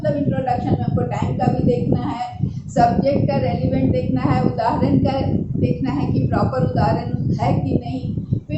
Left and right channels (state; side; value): identical; both; correlation 1.00